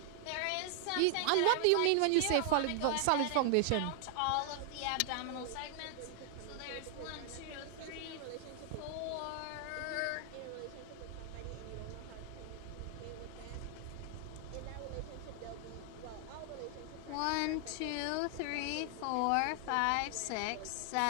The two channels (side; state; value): both; different; correlation 0.00